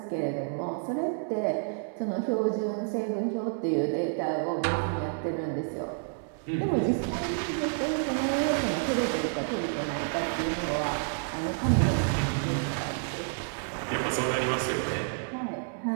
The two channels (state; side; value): silent; left; 58 dB below the other